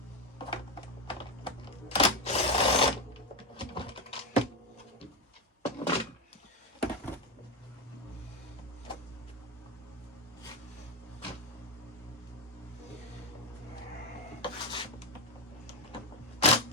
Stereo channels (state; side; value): normal; both; correlation 0.09